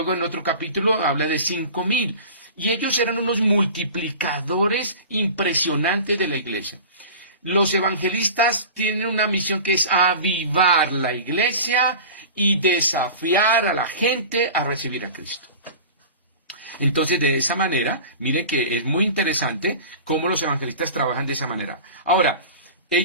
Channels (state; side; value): inverted; both; correlation -0.37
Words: en otro capítulo habla de 5,000. Y ellos eran unos multiplicadores impresionantes de la iglesia. Los evangelistas tienen una misión que es avivar la iglesia y desafiar a la gente a recibir a Cristo. Entonces, de esa manera, miren que es muy interesante cómo los evangelistas trabajan de esa manera. Ahora,